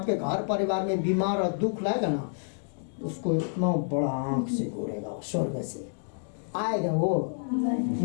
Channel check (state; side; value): silent; right; digital silence